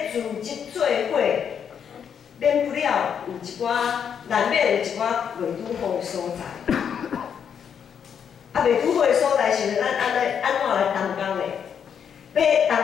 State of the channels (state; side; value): quieter; right; 7.7 dB